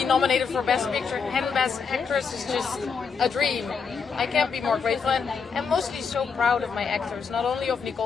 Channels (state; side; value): quieter; right; 5.7 dB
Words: nominated for Best Picture and Best Actress is just a dream. I can't be more grateful, and I'm mostly so proud of my actors, not only of